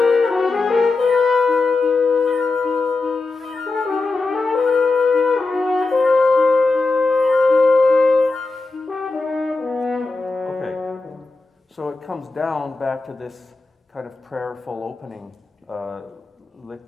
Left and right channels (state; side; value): quieter; right; 3.6 dB